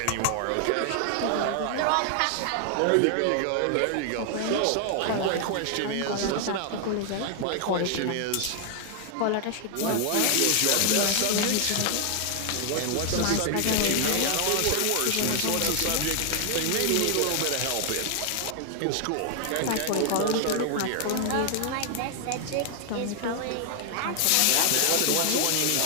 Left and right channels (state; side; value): different; both; correlation 0.00